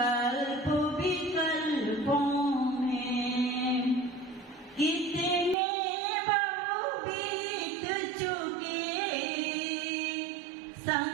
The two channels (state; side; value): drops out; left; at 5.6 s